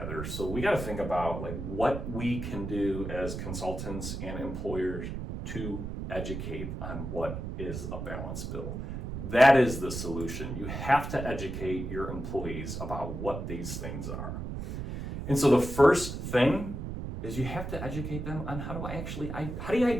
So we got to think about like what we can do as consultants and employers to educate on what is a balance bill. That is the solution. You have to educate your employees about what these things are. And so the first thing is you have to educate them on how do you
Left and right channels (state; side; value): noise; right; rumble, 6 dB below the sound